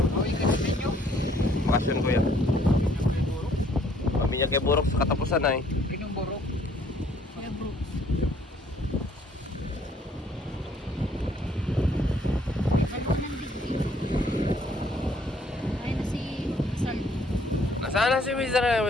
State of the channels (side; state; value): both; normal; correlation 0.63